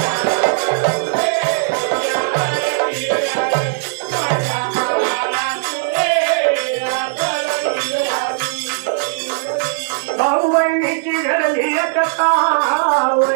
भाऊ बहिणीची घडली एकता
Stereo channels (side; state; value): left; silent; digital silence